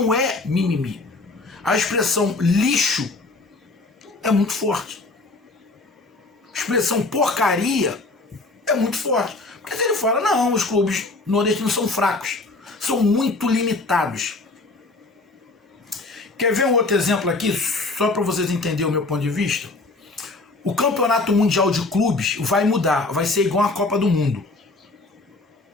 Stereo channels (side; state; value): right; quieter; 3.3 dB